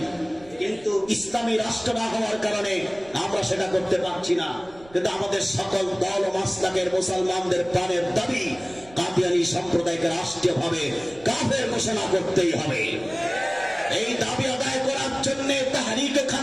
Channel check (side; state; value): right; noise; rumble, 24 dB below the sound